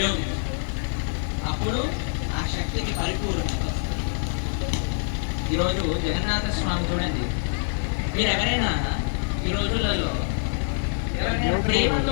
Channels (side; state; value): right; silent; digital silence